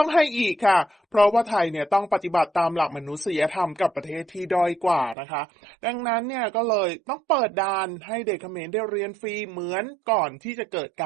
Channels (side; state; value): left; drops out; at 5.2 s